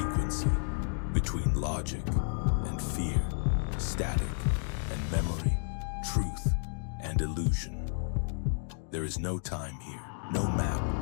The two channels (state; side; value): silent; right; 57 dB below the other